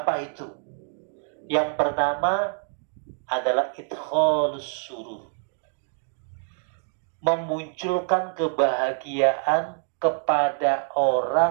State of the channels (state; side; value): silent; left; 61 dB below the other